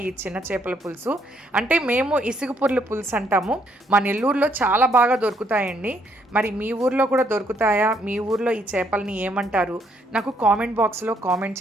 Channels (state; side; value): normal; both; correlation 0.70